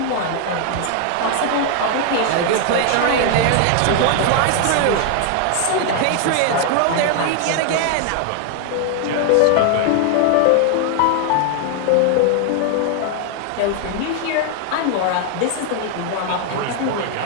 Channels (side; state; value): both; different; correlation 0.00